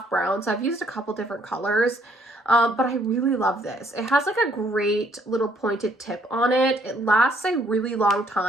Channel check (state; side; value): normal; both; correlation 0.66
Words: brown, so I've used a couple different colors. But I really love this. It has like a great little pointed tip on it. It lasts a really long